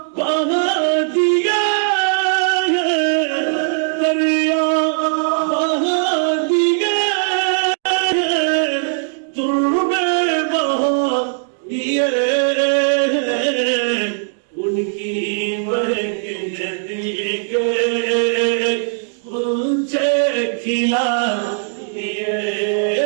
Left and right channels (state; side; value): silent; left; digital silence